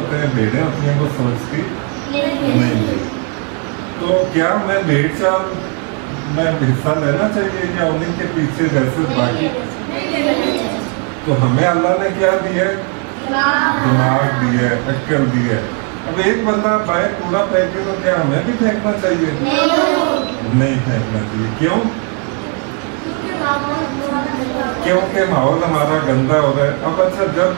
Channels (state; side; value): quieter; left; 37.6 dB